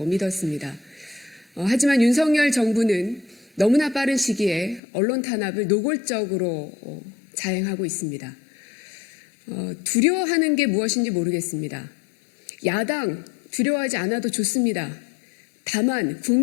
믿었습니다. 하지만 윤석열 정부는 너무나 빠른 시기에 언론 탄압을 노골적으로 자행하고 있습니다. 두려워하는 게 무엇인지 모르겠습니다. 야당 두려워하지 않아도 좋습니다. 다만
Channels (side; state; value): right; drops out; at 4.8 s